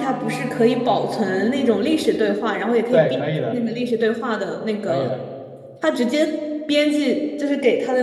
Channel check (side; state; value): both; identical; correlation 1.00